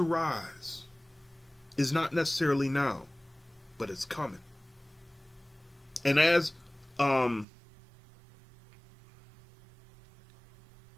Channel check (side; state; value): left; drops out; at 7.5 s